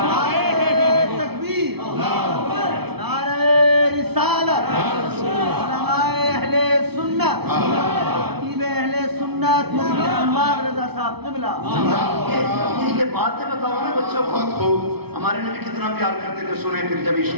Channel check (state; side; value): late; left; 0.98 ms